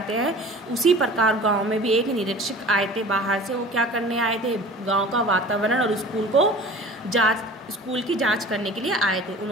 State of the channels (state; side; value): normal; both; correlation 0.42